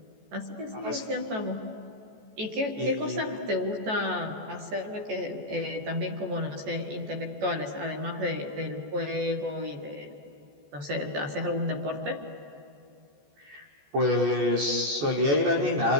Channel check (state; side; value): late; left; 14 ms